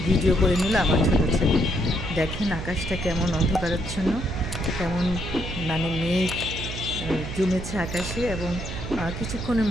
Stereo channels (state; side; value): noise; right; hum, 7 dB below the sound